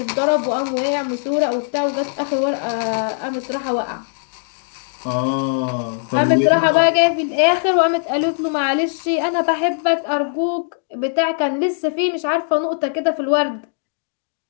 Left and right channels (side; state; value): right; silent; digital silence